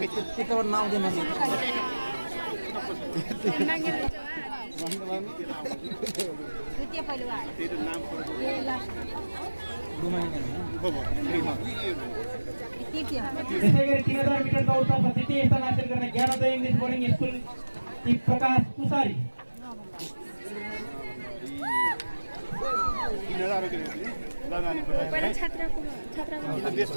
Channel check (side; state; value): both; inverted; correlation -1.00